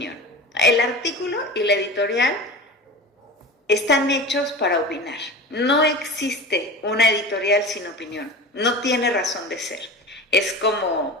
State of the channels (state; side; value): normal; both; correlation 0.31